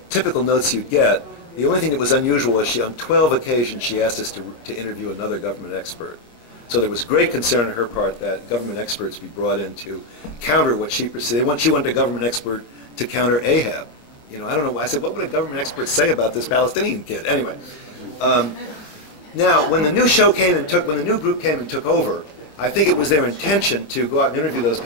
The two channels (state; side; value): late; right; 25 ms